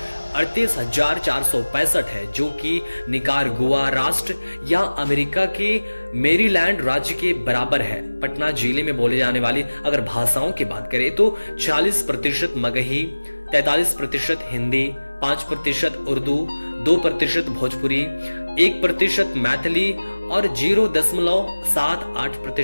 है, जो कि निकारागुआ राष्ट्र या अमेरिका के मेरीलैंड राज्य के बराबर है। पटना जिले में बोले जाने वाली अगर भाषाओं की बात करें तो 40% मगही, 43% हिंदी, 5% उर्दू, 2% भोजपुरी, 1% मैथिली और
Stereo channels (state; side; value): inverted; both; correlation -1.00